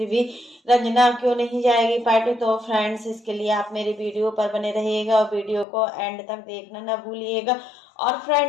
भी रंजना क्यों नहीं जाएगी पार्टी? तो फ्रेंड्स, इसके लिए आप मेरे वीडियो पर बने रहिएगा और वीडियो को एंड तक देखना ना भूलिएगा। और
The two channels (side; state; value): right; drops out; at 5.7 s